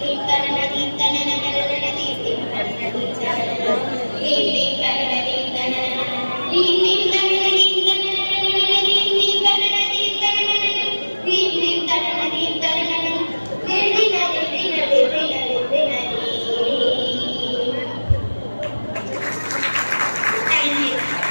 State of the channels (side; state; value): both; inverted; correlation -1.00